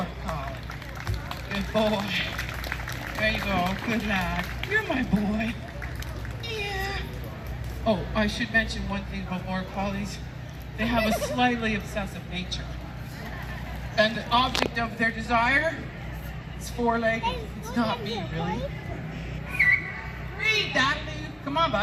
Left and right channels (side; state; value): both; identical; correlation 1.00